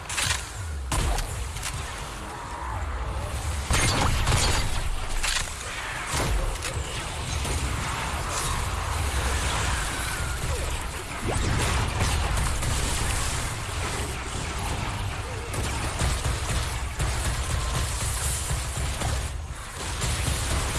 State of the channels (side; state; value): both; identical; correlation 1.00